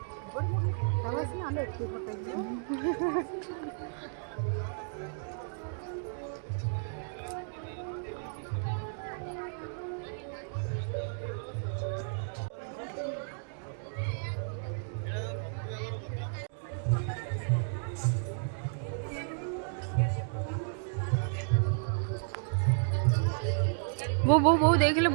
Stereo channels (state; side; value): silent; left; digital silence